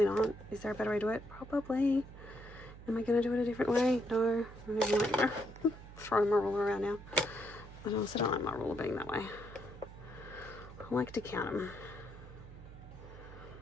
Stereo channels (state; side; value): noise; right; hum, 16 dB below the sound